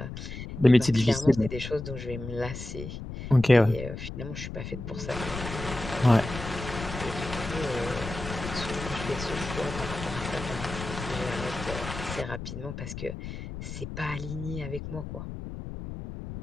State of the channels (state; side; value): noise; left; rumble, 8 dB below the sound